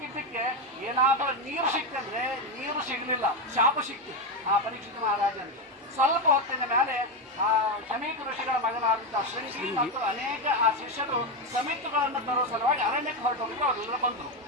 ಏನಾದರೂ ನೀರು ಸಿಕ್ತಂದ್ರೆ ನೀರು ಸಿಗಲಿಲ್ಲ, ಶಾಪ ಸಿಕ್ತು ಆ ಪರೀಕ್ಷಿತ ಮಹಾರಾಜನಿಗೆ. ಸ್ವಲ್ಪ ಹೊತ್ತಿನ ಮೇಲೆ ಆ ಶಮೀಕ ಋಷಿಗಳ ಮಗನಾದಂತಹ ಶೃಂಗಿ ಮತ್ತು ಅನೇಕ ಆ ಶಿಷ್ಯರು ಸಮಿತಿಗಳನ್ನು ತರುವ ಸಲುವಾಗಿ ಅರಣ್ಯಕ್ಕೆ ಹೊರಟೋಗಿ ಅವರೆಲ್ಲ ಬಂದರು.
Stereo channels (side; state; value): both; normal; correlation 0.10